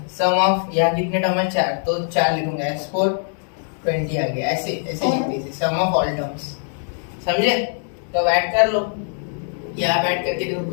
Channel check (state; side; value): silent; right; 57 dB below the other